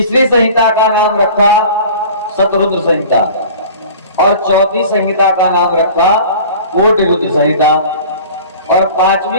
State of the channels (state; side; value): inverted; both; correlation -0.42